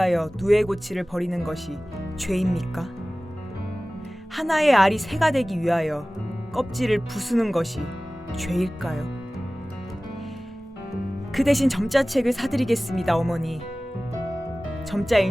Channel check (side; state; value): both; normal; correlation 0.98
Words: 누에 고치를 버리는 것이 죄입니까? 하나의 알이 새가 되기 위하여 껍질을 부수는 것이 죄일까요? 그 대신 점자책을 사드리겠습니다, 어머니. 점자